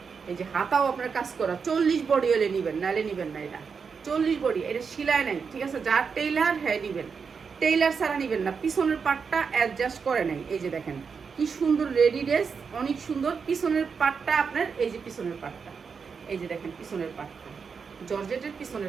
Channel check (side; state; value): left; quieter; 5.8 dB